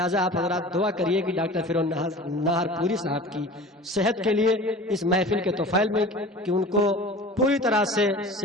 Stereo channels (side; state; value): both; normal; correlation 0.39